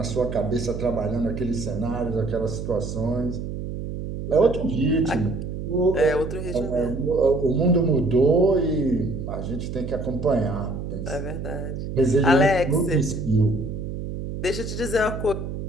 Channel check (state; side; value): noise; right; hum, 6 dB below the sound